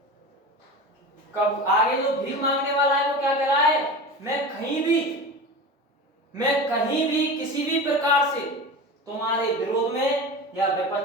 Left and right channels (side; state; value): both; normal; correlation 0.30